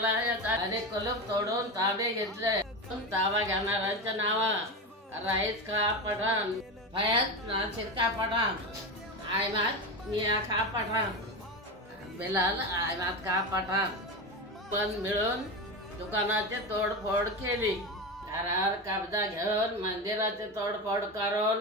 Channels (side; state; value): both; normal; correlation 0.20